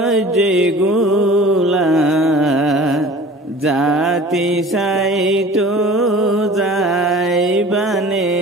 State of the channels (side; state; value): both; normal; correlation 0.43